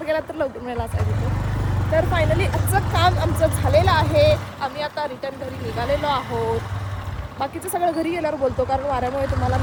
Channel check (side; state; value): both; identical; correlation 1.00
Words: गेलात तर लवकर मिळाला असायचं. तर फायनली आजचं काम आमचं झालेलं आहे. आम्ही आता रिटर्न घरी निघालेलो आहोत. बाकीचं सगळं घरी गेल्यावर बोलतो, कारण वाऱ्यामुळे तुम्हाला